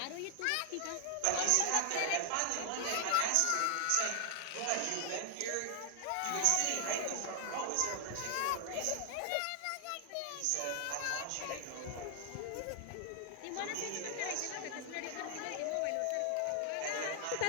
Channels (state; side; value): different; both; correlation 0.00